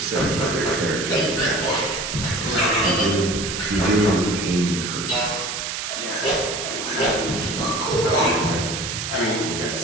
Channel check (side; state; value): right; noise; hiss, 4 dB below the sound